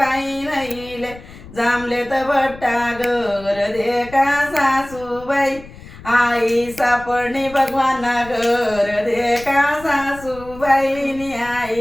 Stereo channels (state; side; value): noise; left; rumble, 18 dB below the sound